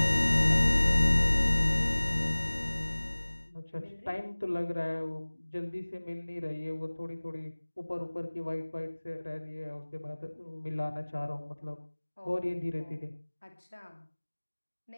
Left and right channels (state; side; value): inverted; both; correlation -1.00